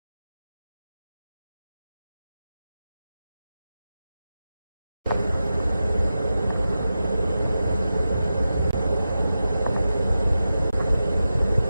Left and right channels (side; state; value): both; inverted; correlation -0.92